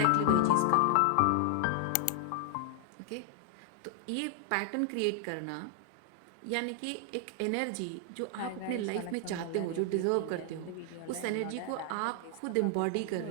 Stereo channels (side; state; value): both; different; correlation 0.00